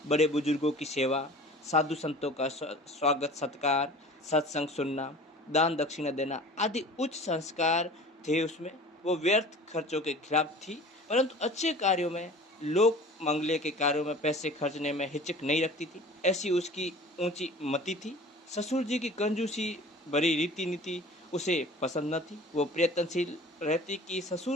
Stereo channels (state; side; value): normal; both; correlation 0.43